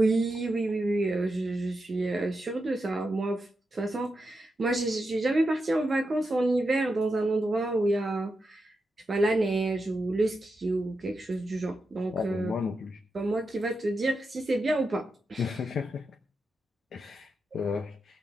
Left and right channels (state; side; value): normal; both; correlation 0.87